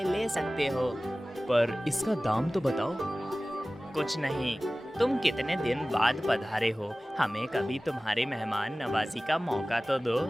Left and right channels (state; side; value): normal; both; correlation 0.97